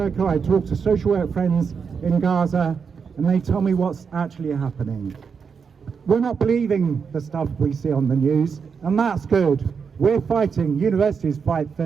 I talk to social work friends in Gaza and they tell me what's actually happening. We're not believing the stuff we see on the news, and that's good. We're fighting, universities fight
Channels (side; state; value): left; quieter; 6.0 dB